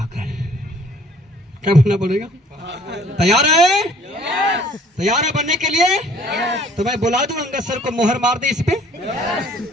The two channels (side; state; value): both; normal; correlation 0.56